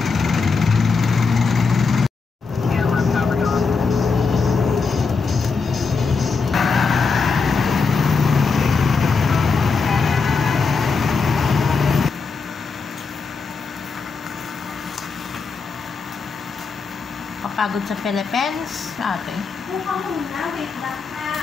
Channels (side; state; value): right; quieter; 4.7 dB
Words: Pagod sa Philippines, ate.